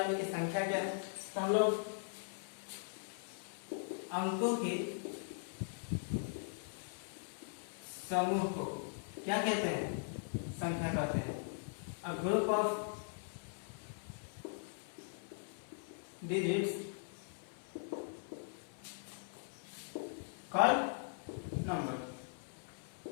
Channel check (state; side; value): silent; right; 51 dB below the other